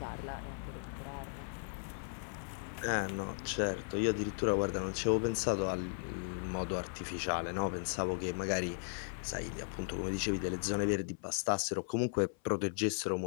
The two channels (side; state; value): right; silent; 53 dB below the other